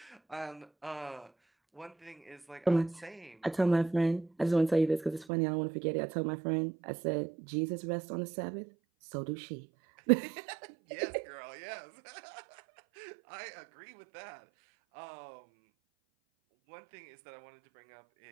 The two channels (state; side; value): drops out; left; at 5.2 s